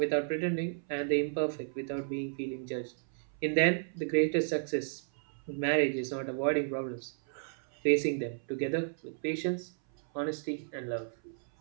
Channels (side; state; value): left; silent; 56 dB below the other